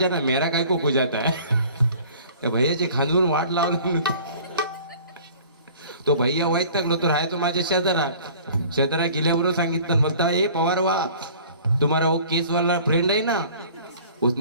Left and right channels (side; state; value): both; inverted; correlation -0.48